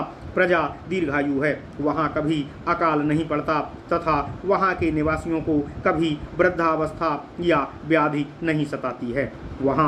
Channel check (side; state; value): both; identical; correlation 1.00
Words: प्रजा दीर्घायु है। वहाँ कभी अकाल नहीं पड़ता तथा वहाँ के निवासियों को कभी वृद्धावस्था या व्याधि नहीं सताती है।